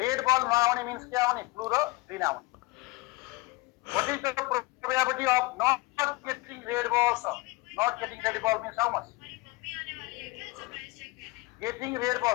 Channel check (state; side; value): quieter; right; 22.2 dB